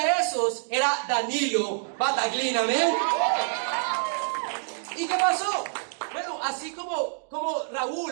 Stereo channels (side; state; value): left; silent; digital silence